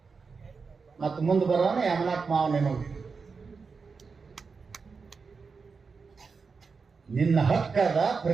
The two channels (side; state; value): left; quieter; 5.0 dB